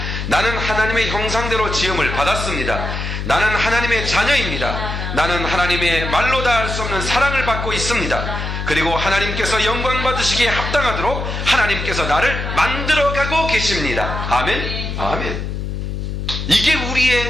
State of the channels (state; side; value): noise; left; hum, 4 dB below the sound